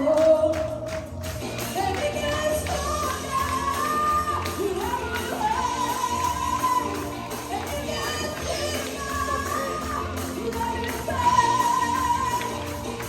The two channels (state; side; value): identical; both; correlation 1.00